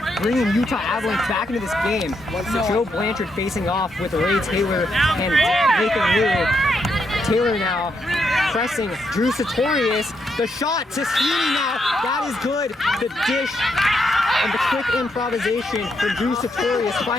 bringing Utah Avalanche back into this game. So Joe Blanchard facing off with Ray Taylor and Nathan Liu. Taylor now pressing Drew Sartorius. The shot to Sweeney now. That is good. The dish and the quick improvisation for Drew Sartorius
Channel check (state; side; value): normal; both; correlation 0.79